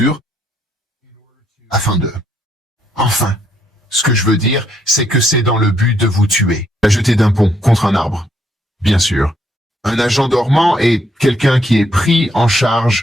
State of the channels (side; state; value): both; normal; correlation 0.72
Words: afin de... Enfin, ce que je veux dire, c'est que c'est dans le but de vous tuer. La jeter d'un pont contre un arbre. Bien sûr. Un agent dormant est quelqu'un qui est pris en